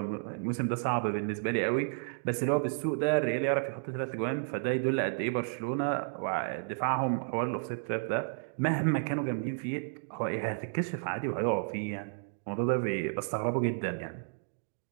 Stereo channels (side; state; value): left; silent; digital silence